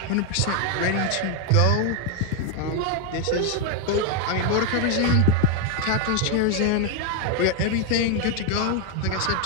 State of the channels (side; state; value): both; different; correlation 0.01